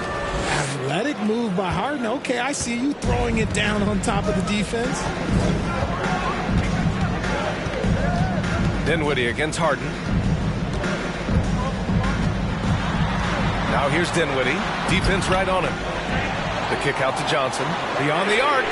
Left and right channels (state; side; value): identical; both; correlation 1.00